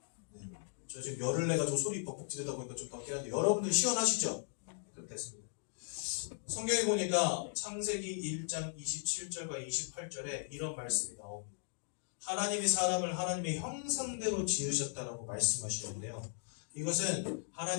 네. 저 지금 열을 내가지고 소리 벅벅 지르다 보니까 좀 덥긴 한데 여러분들 시원하시죠? 그럼 됐습니다. 성경에 보니까 창세기 1장 27절과 28절에 이런 말씀이 나옵니다. 하나님이 사람을 하나님의 형상대로 지으셨다라고 말씀하시는데요. 이것은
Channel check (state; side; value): silent; right; digital silence